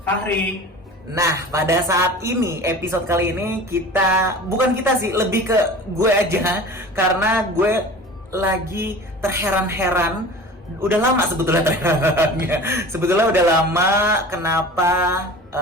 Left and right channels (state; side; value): normal; both; correlation 0.38